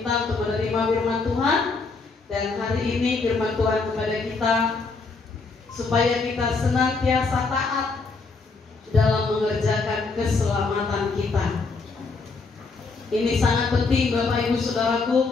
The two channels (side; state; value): right; quieter; 4.2 dB